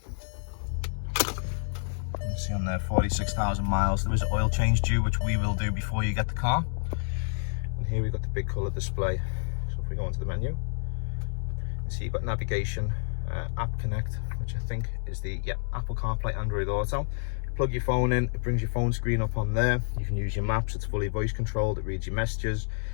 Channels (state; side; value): silent; right; digital silence